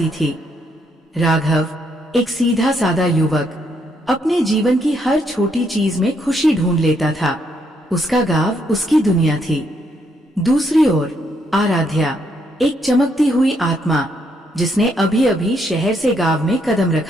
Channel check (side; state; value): both; normal; correlation 0.74